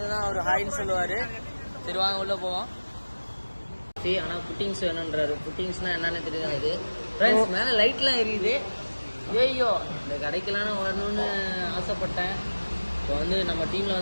அவர் ஹாய்ன்னு சொல்லுவார். சரி வாங்க உள்ளே போவோம். ஆனால் புட்டிங்ஸ் வேணுன்றாரு. புட்டிங்ஸ்னால் என்னன்னு தெரியாது ஃப்ரெண்ட்ஸ். மேலே லைட்லாம் எரியுது. ஐயோ, இந்த கடைக்கெல்லாம் வரணும்னு ஆசைப்பட்டேன். இப்போ வந்து நம்ம டீமில்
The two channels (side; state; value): both; inverted; correlation -1.00